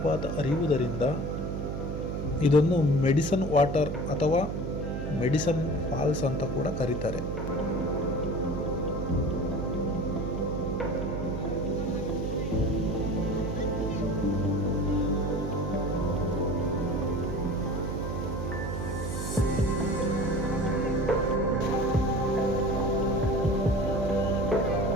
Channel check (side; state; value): right; noise; hum, 4 dB below the sound